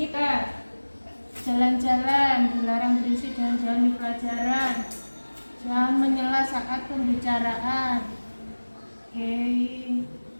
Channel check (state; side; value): inverted; both; correlation -1.00